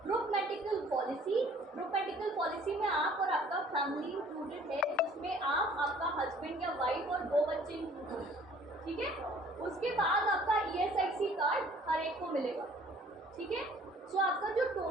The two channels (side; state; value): both; normal; correlation 0.55